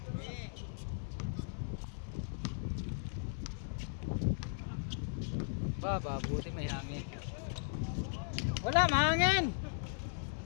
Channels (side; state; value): right; silent; 53 dB below the other